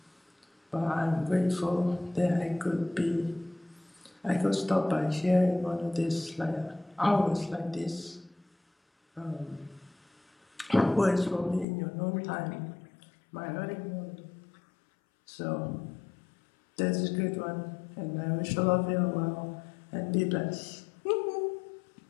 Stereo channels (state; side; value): drops out; right; at 11.7 s